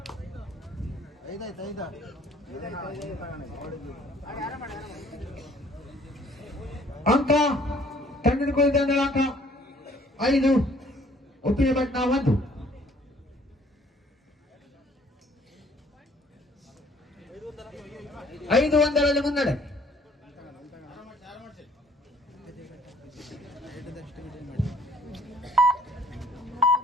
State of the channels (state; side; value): normal; both; correlation 0.58